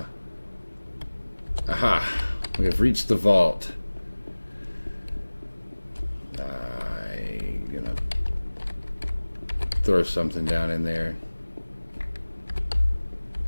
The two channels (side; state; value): both; inverted; correlation -1.00